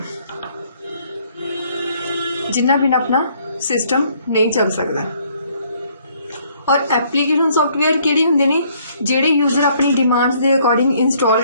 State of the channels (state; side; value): inverted; both; correlation -0.65